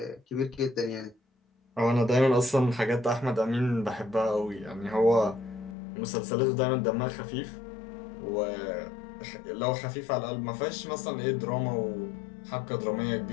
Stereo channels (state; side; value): drops out; right; at 5.8 s